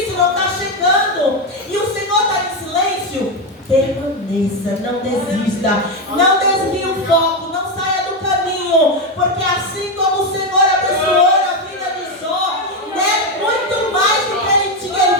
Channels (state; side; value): normal; both; correlation 0.09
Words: não está chegando. E o Senhor está em silêncio. Permaneça, não desista. Não desvie o foco, não saia do caminho. Porque assim como o Senhor abençoou a vida de Jó, né, muito mais do que ele tinha, Ele